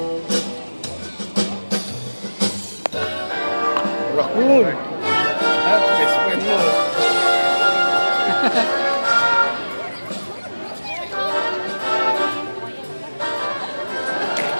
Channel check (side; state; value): both; inverted; correlation -1.00